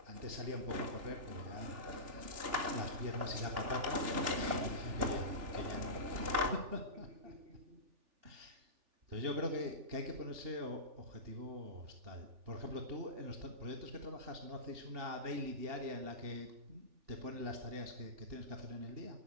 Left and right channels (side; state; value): left; late; 3.4 ms